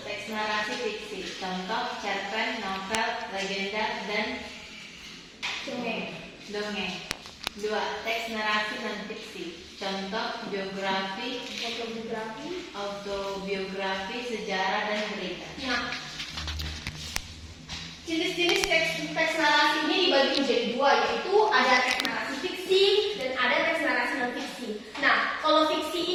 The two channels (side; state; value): both; identical; correlation 1.00